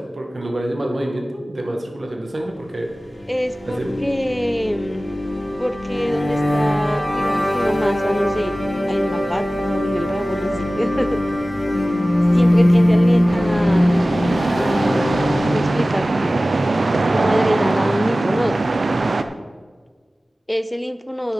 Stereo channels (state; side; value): normal; both; correlation 0.97